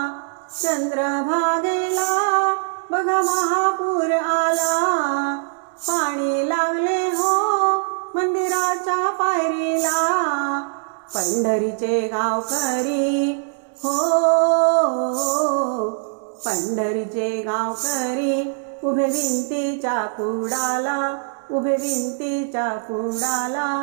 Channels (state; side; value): silent; left; 64 dB below the other